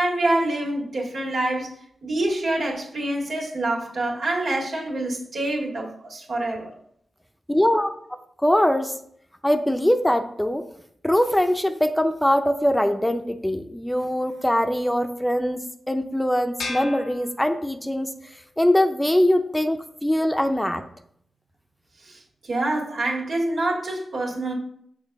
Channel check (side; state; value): both; normal; correlation 0.96